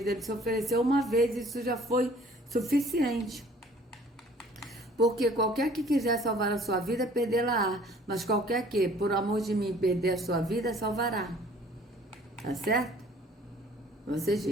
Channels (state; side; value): normal; both; correlation 0.54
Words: ele se ofereceu uma vez e isso já foi suficiente. Porque qualquer que quiser salvar a sua vida, perdê-la-á. Mas qualquer que, por amor de mim, perder a sua vida, salvará. Tá certo? Vocês